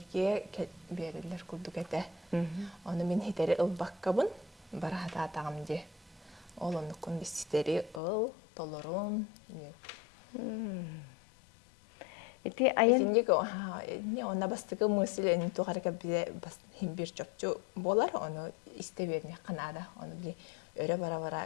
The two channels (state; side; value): drops out; right; at 8.0 s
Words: берилер курдук эте. Оны мен хитери ылбаккабын, барахата атагамде. Ол онукун истери ыл, толорун. Эти айын Итинник не онна бастыгы мысль эн тухарга бизе бас химбир чопчу болар, оны истеберне канада, оны били өрө